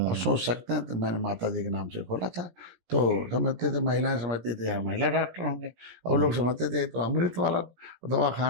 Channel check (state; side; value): late; left; 17 ms